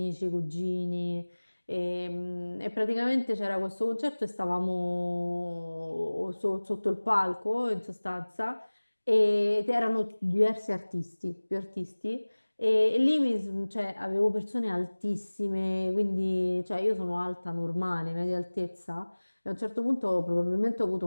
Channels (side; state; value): both; inverted; correlation -1.00